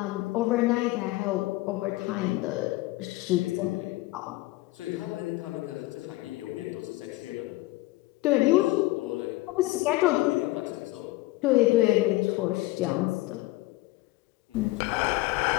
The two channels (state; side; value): quieter; right; 19.4 dB